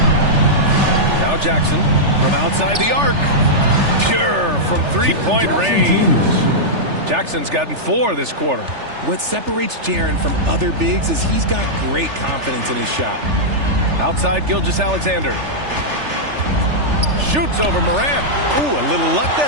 Now Jackson from outside the arc. Pure from three-point range. Jackson's gotten 4 this quarter. What separates Jaren from other bigs is he's got great confidence in his shot. Outside Gilgeous-Alexander. shoots over Morant. Ooh, a little luck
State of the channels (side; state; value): left; late; 3.4 ms